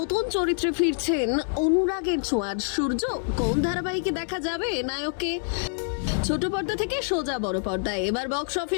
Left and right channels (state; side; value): silent; right; digital silence